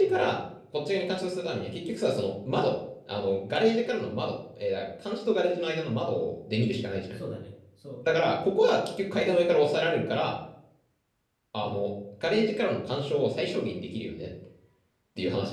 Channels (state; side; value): identical; both; correlation 1.00